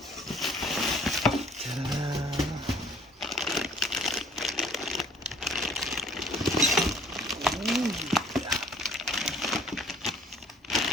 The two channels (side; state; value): both; normal; correlation 0.55